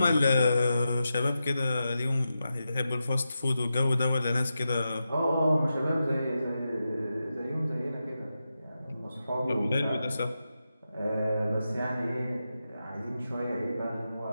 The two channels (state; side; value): inverted; both; correlation -0.89